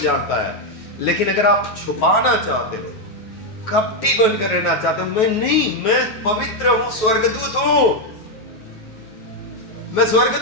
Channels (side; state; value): right; late; 9.3 ms